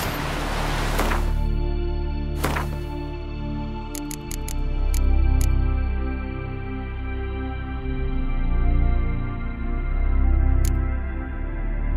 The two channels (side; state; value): both; identical; correlation 1.00